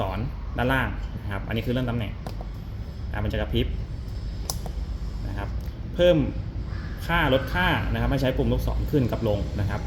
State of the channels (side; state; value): both; identical; correlation 1.00